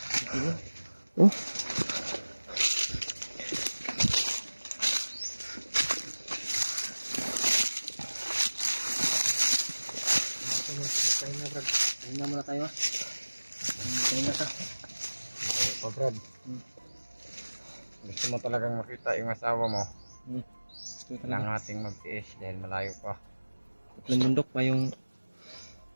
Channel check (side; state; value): both; inverted; correlation -1.00